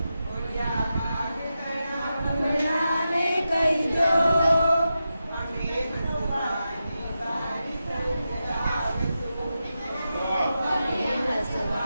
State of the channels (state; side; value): inverted; both; correlation -0.90